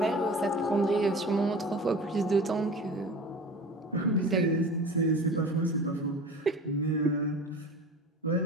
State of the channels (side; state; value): both; normal; correlation 0.37